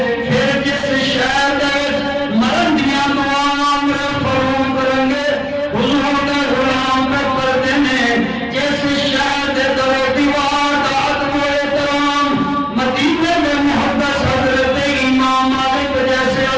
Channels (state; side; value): identical; both; correlation 1.00